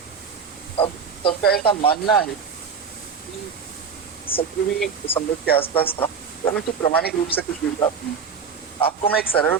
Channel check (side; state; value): left; quieter; 6.2 dB